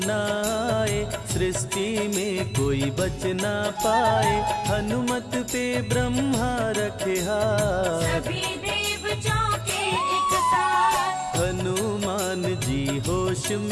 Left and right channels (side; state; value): both; identical; correlation 1.00